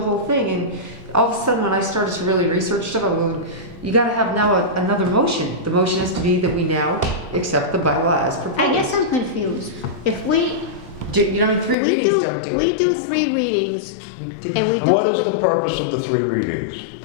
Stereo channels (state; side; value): drops out; right; at 11.8 s